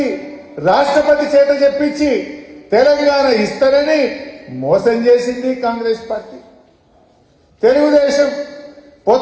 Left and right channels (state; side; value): identical; both; correlation 1.00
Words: రాష్ట్రపతి చేత చెప్పించి తెలంగాణ ఇస్తారని మోసం చేసింది కాంగ్రెస్ పార్టీ. తెలుగుదేశం